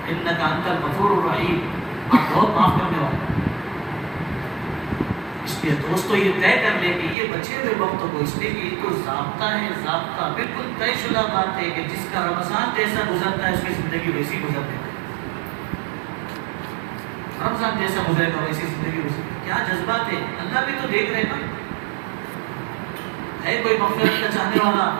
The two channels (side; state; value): left; drops out; at 7.2 s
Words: انک انت الغفور الرحیم، آپ بہت معاف کرنے والے. اس لیے دوستو یہ طے کر لے کہ یہ بچے ہوئے وقتوں کو، اس لیے کہ یہ تو ضابطہ ہے، ضابطہ بالکل طے شدہ بات ہے کہ جس کا رمضان جیسا گزرتا ہے اس کی زندگی ویسی گزرتی ہے. رمضان جیسا گزرے گا ویسی زندگی گزرے گی. کیا جذبات ہے، اللہ بھی تو دیکھ رہے نا. ہے کوئی مغفرت کا چاہنے والا،